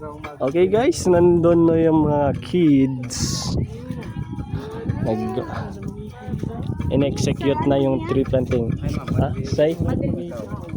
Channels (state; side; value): identical; both; correlation 1.00